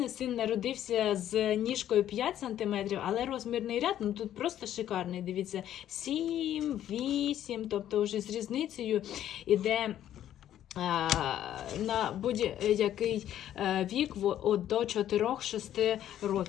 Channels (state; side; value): quieter; right; 11.5 dB